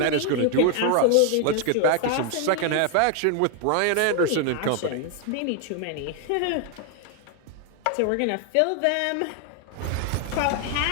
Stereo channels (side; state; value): both; different; correlation 0.00